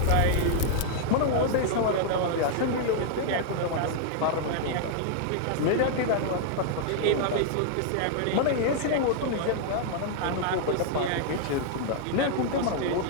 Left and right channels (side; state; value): both; different; correlation -0.01